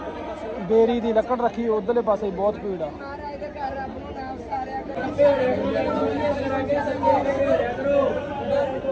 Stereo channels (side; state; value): both; identical; correlation 1.00